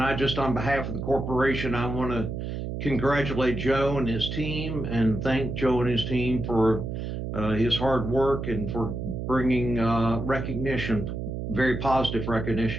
I just, on behalf of the corporation, I want to congratulate Joe and his team and thank Joe and his team for his hard work and for bringing recognition, very positive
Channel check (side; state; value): right; noise; hum, 5 dB below the sound